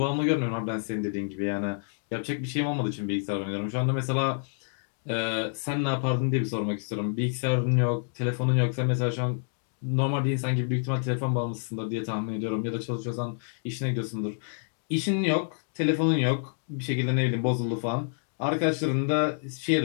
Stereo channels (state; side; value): silent; right; digital silence